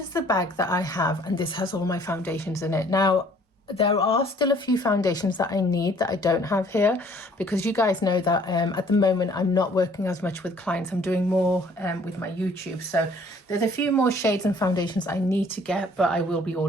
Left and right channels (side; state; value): both; normal; correlation 0.58